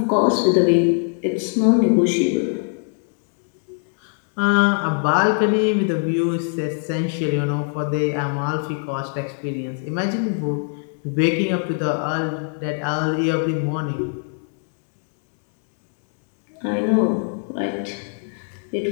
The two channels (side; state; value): right; silent; 57 dB below the other